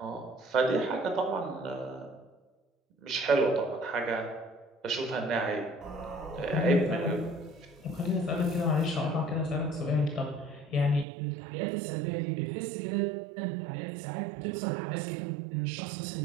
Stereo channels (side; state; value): left; drops out; at 11.1 s